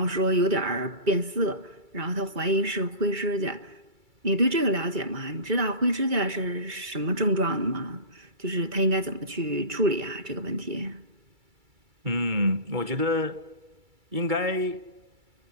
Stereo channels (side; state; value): left; late; 2.3 ms